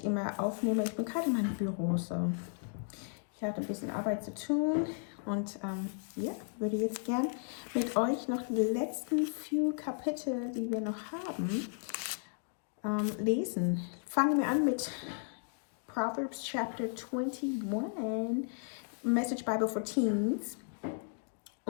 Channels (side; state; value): right; silent; 55 dB below the other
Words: immer aufnehme. Ich bin gerade in meinem Büro, so. Ich hatte ein bisschen Arbeit zu tun und würde jetzt gern mit euch noch die letzten few Kapitel, die wir noch haben, lesen. Fangen wir an mit Proverbs Chapter 21, Message Bible for Teens.